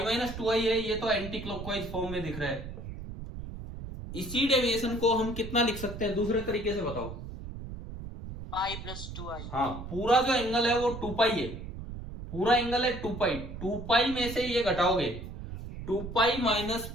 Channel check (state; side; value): noise; right; rumble, 9 dB below the sound